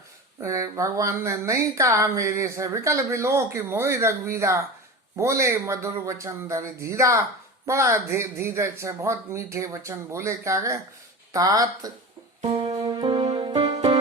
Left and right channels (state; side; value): normal; both; correlation 0.29